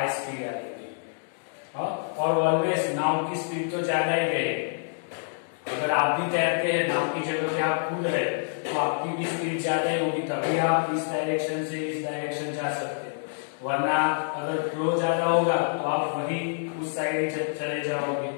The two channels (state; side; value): silent; right; digital silence